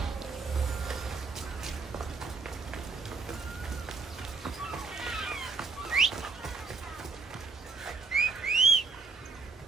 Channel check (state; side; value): quieter; left; 4.4 dB